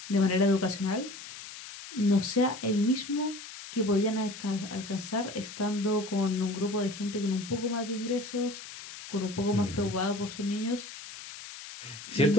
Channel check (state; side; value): noise; left; hiss, 13 dB below the sound